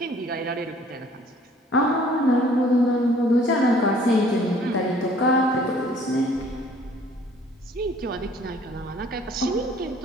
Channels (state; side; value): normal; both; correlation 0.56